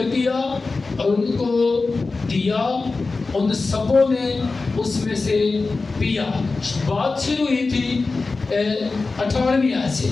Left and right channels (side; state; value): right; quieter; 3.9 dB